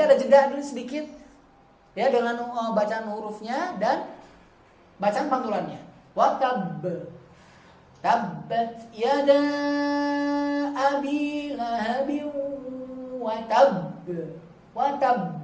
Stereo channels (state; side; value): identical; both; correlation 1.00